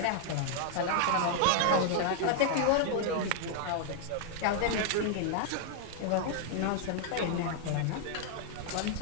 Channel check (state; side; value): different; both; correlation 0.00